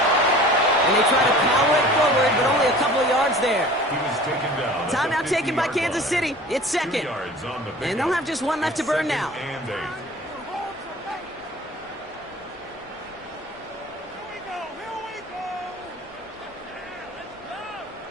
And they try to power it forward, but only a couple of yards there. He was taken down. Timeout taken by Kansas City. It's second. And they'll have just one left to burn now. And 8.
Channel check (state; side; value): normal; both; correlation 0.43